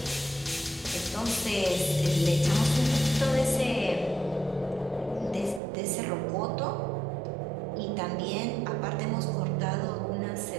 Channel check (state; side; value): drops out; left; at 5.6 s